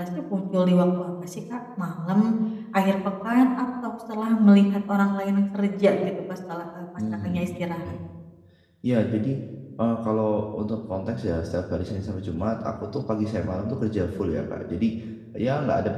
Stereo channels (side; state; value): both; identical; correlation 1.00